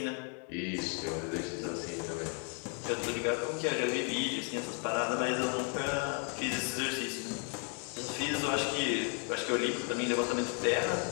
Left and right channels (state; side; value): quieter; right; 39.9 dB